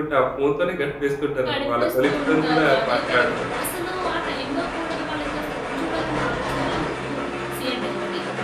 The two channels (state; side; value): identical; both; correlation 1.00